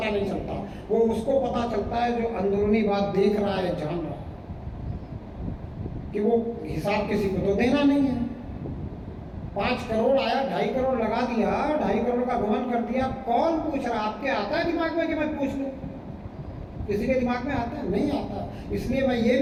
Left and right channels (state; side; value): identical; both; correlation 1.00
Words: नहीं चलता। वो उसको पता चलता है जो अंदरूनी बात देख रहा है, जान रहा है, कि वो हिसाब किसी को तो देना नहीं है। 5 करोड़ आया, 2.5 करोड़ लगा दिया, 2.5 करोड़ का गमन कर दिया। कौन पूछ रहा? आपके आता है दिमाग में कि मैं पूछ लूं? किसी के दिमाग में आता है? नहीं आता। इसलिए मैं ये